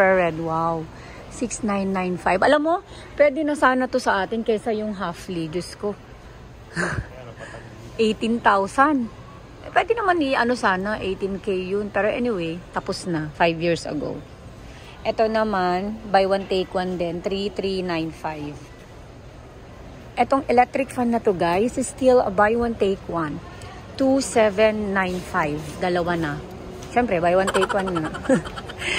Wow. 6995. Alam mo, pwede na sana to sa atin kaysa yung halfly. Diyos ko. 18,000. Pwede naman ano sana, 18K yun. Pero anyway, tapos na. 5 years ago. Ito naman, buy one take one din, 3395. Etong electric fan na to guys, is still a buy one take one. 2795. Dalawa na. Siyempre, buy one take one na.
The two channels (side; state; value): both; identical; correlation 1.00